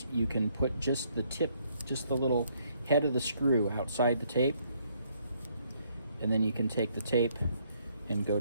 you can put just the tip, just the little head of the screw outside the tape, and then you can take the tape and go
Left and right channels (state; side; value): inverted; both; correlation -0.69